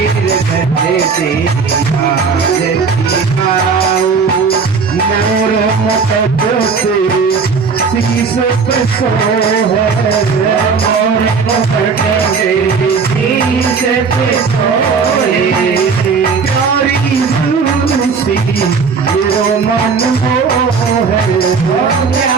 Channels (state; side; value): quieter; left; 5.3 dB